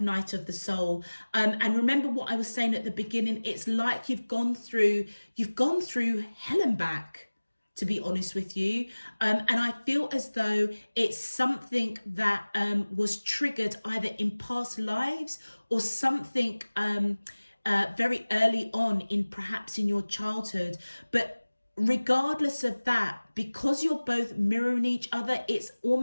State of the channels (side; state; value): both; inverted; correlation -1.00